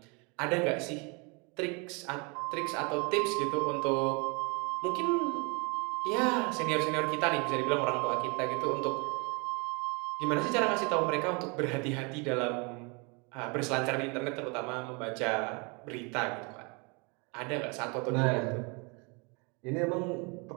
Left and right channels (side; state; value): left; quieter; 31.3 dB